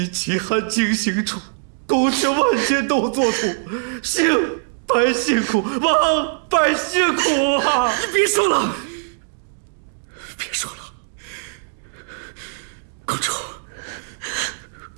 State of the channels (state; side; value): silent; left; digital silence